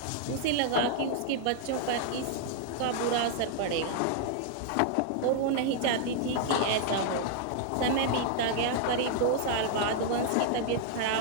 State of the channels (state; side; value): different; both; correlation 0.00